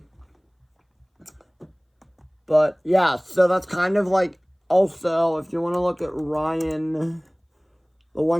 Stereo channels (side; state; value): both; identical; correlation 1.00